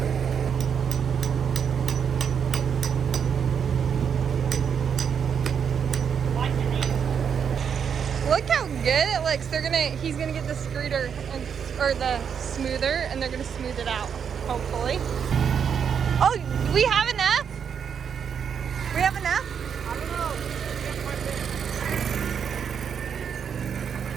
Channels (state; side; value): quieter; left; 7.3 dB